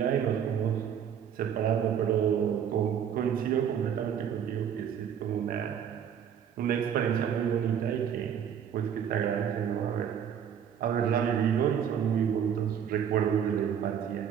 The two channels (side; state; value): left; quieter; 8.5 dB